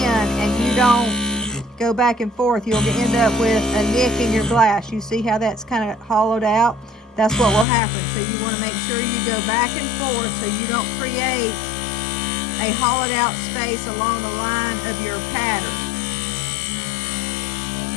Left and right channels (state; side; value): drops out; right; at 7.7 s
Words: and you don't go back and forth, you'll end up with a nick in your glass. You see how that's kind of hollowed out? That's what will happen. So you want to make sure you go back and forth so you don't create a hollowed out space along the line of your pattern.